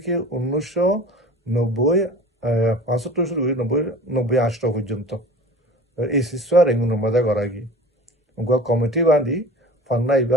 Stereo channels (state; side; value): normal; both; correlation 0.39